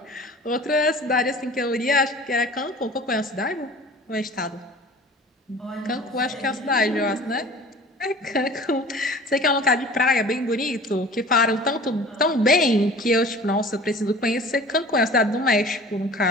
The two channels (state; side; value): normal; both; correlation 0.43